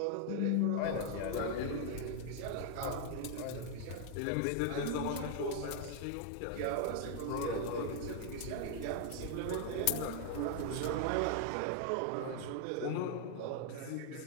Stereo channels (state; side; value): different; both; correlation 0.00